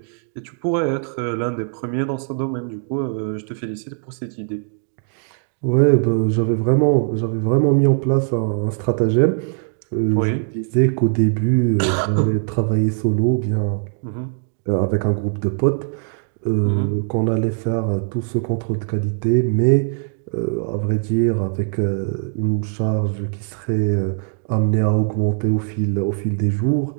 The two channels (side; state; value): left; silent; digital silence